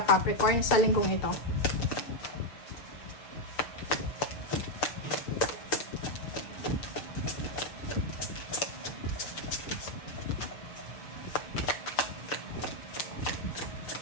Capricorn sa linggong ito.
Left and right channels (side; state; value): right; late; 6.5 ms